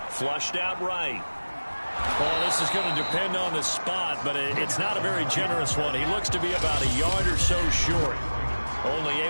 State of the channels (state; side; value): inverted; both; correlation -1.00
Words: Flushed out right. Well, this is going to depend on the spot, but it's not a very generous one. He looks to be about a yard or so short. Only